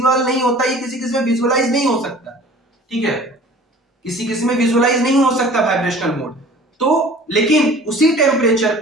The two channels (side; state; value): both; normal; correlation 0.46